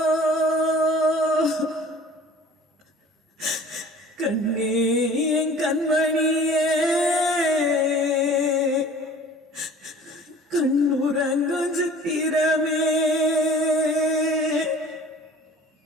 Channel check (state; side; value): normal; both; correlation 0.46